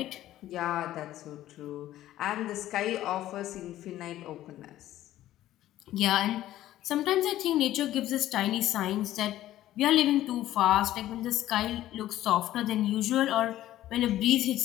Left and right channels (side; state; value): right; quieter; 13.8 dB